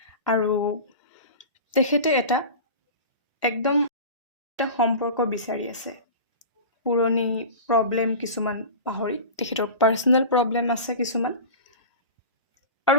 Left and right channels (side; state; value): both; inverted; correlation -0.32